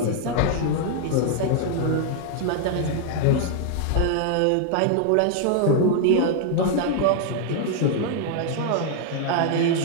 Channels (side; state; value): both; different; correlation 0.00